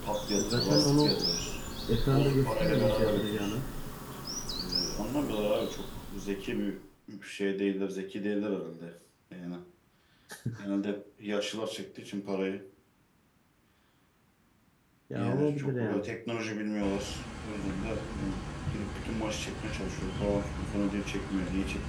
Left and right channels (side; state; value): both; identical; correlation 1.00